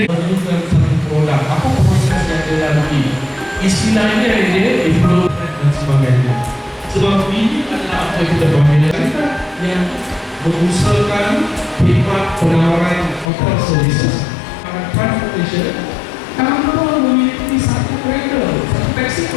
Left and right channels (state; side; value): drops out; right; at 13.3 s